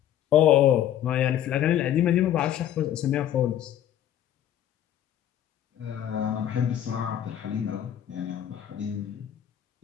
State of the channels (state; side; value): quieter; right; 11.1 dB